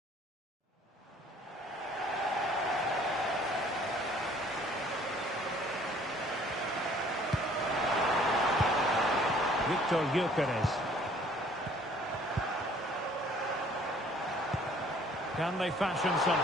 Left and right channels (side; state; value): both; normal; correlation 0.56